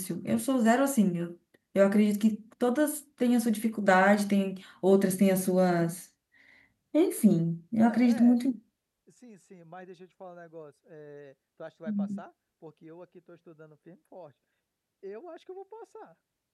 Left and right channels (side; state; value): both; identical; correlation 1.00